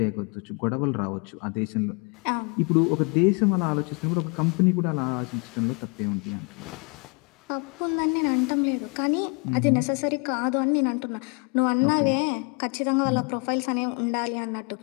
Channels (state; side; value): quieter; right; 34.2 dB